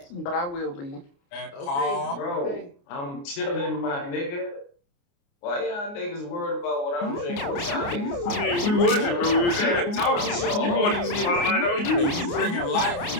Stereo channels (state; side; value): late; right; 29 ms